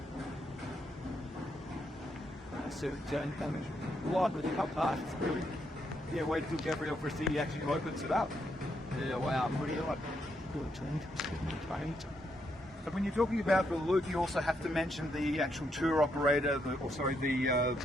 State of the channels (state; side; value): normal; both; correlation 0.78